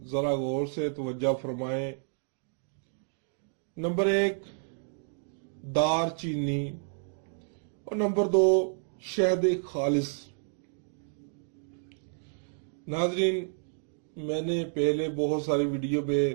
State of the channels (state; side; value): silent; left; digital silence